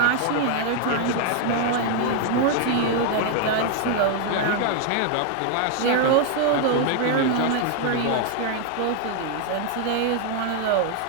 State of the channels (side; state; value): both; different; correlation 0.00